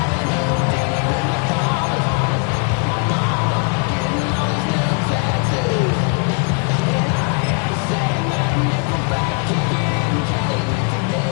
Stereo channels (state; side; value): quieter; right; 36.0 dB